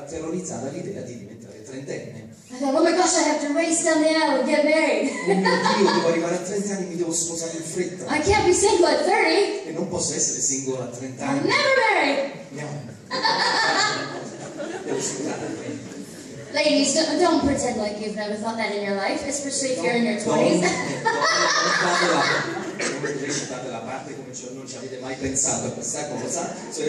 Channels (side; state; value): both; identical; correlation 1.00